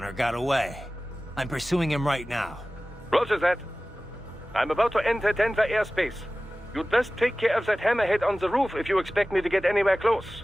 got away. I'm pursuing him right now. Roger that. I'm about to enter Denver airspace. You'd best take care of that hammerhead on the roof if you expect me to get anywhere close.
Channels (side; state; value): both; normal; correlation 0.97